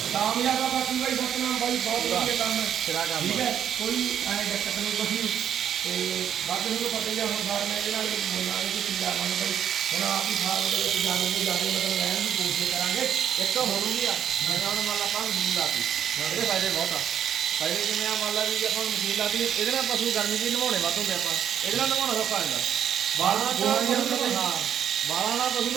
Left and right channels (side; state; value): left; quieter; 9.3 dB